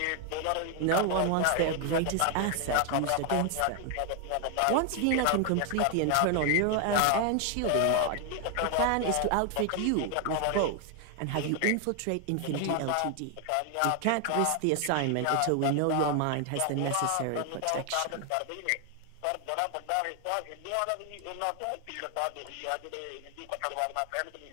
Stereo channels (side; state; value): both; different; correlation 0.00